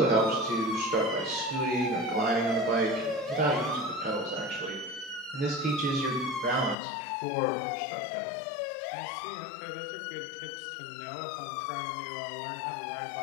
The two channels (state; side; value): drops out; right; at 6.8 s